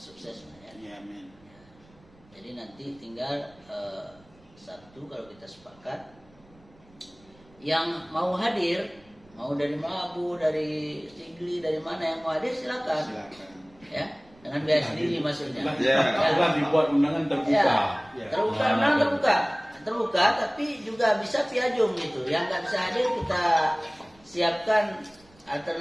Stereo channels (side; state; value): right; noise; rumble, 28 dB below the sound